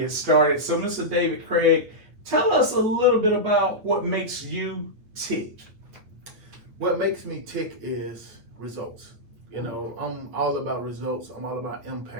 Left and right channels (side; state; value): left; late; 8.8 ms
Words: started. So Mr. David Craig, tell us a little bit about what makes you tick. What makes me tick is results. You know, I'm all about results. I'm all about